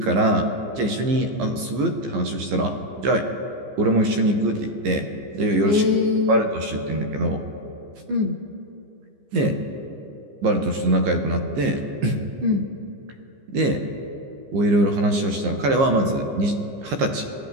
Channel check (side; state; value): left; late; 15 ms